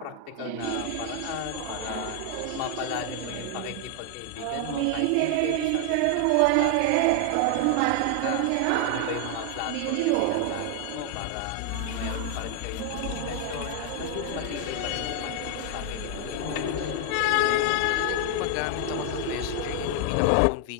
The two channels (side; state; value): both; different; correlation 0.00